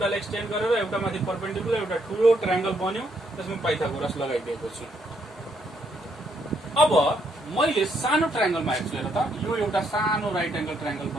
एक्सटेन्ड गरेर एउटा माथि परपेन्डिकुलर एउटा ठूलो ट्रायंगल बन्यो, त्यसमा पाइथागोरस लगाइदिएको छु। अब मैले सानो ट्रायंगलमा हेर्छु हेर त, यो एउटा सानो राइट एंगल ट्रायंगल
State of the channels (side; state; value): both; normal; correlation 0.73